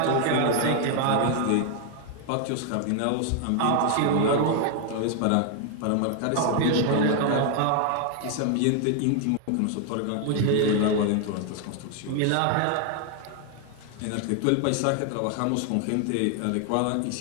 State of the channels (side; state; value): both; different; correlation 0.00